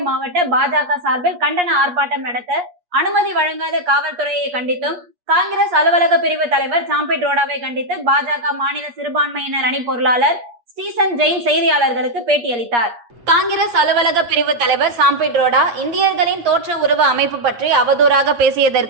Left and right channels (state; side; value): late; left; 8.4 ms